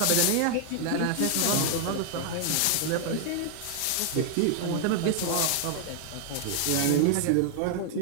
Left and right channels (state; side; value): different; both; correlation 0.00